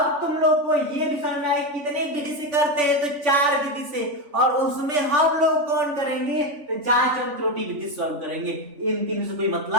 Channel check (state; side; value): late; left; 3.5 ms